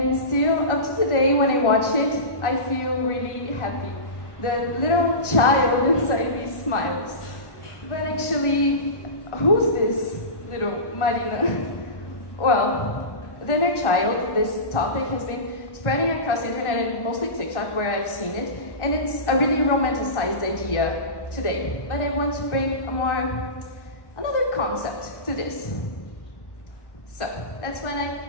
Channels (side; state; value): right; late; 1.1 ms